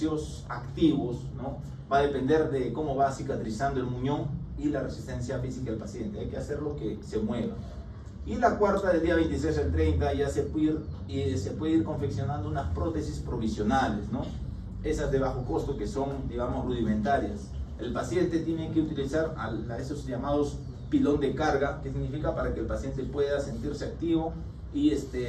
activos, ¿no? Va a depender de cómo va cicatrizando el muñón y la resistencia física del paciente, hay que hacerlo que se mueva. Y la cuarta, del día 26 al 30, ya se puede ir confeccionando unas prótesis provisionales, ¿no? Esas de bajo costo que son, digamos, rudimentarias. El paciente tiene que utilizar a esos llamados pilón de carga, que significa para que el paciente pueda sentirse activo y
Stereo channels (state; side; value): identical; both; correlation 1.00